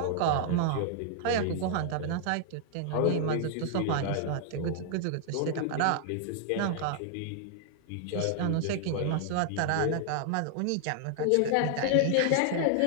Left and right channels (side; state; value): both; different; correlation 0.00